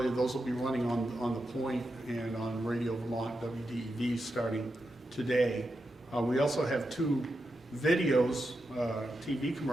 those will be running on the Point and on Radio Vermont WDEV starting today. We also have 2 videos, TV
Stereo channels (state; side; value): normal; both; correlation 0.87